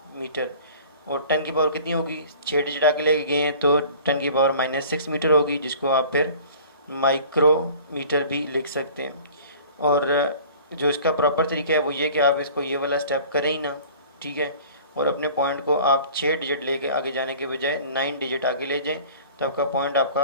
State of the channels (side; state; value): both; inverted; correlation -0.46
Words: मीटर। और 10 की पावर कितनी होगी, 6 डिजिट आगे लेके गए हैं तो 10 की पावर -6 मीटर होगी, जिसको आप फिर माइक्रोमीटर भी लिख सकते हैं। और जो इसका प्रॉपर तरीका है वो ये कि आप इसको ये वाला स्टेप करें ही ना, ठीक है, और अपने पॉइंट को आप 6 डिजिट लेके आगे जाने के बजाय 9 डिजिट आगे ले जाएं तो आपका पॉइंट